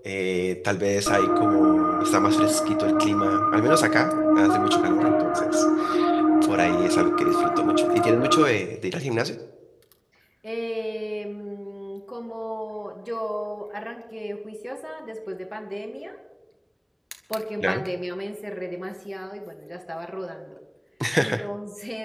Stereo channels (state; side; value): identical; both; correlation 1.00